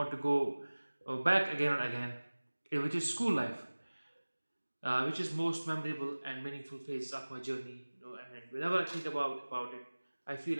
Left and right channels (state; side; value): inverted; both; correlation -1.00